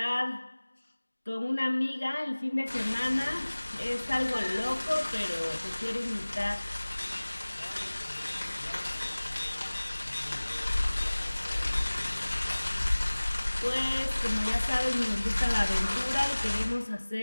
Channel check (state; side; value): inverted; both; correlation -1.00